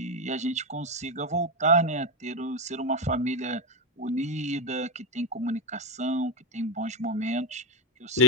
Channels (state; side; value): normal; both; correlation 0.09